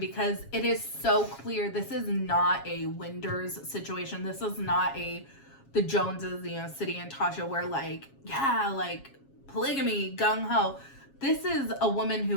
it is so clear this is not a Winders situation. This is not the Joneses, City and Tasha, where like polygamy, gung-ho. This is a woman who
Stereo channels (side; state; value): right; late; 7.3 ms